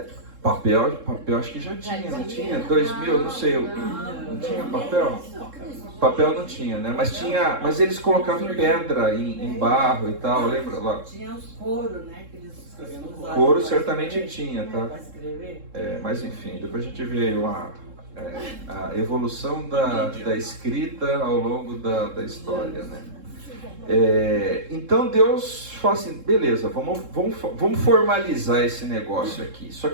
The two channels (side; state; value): left; late; 3.7 ms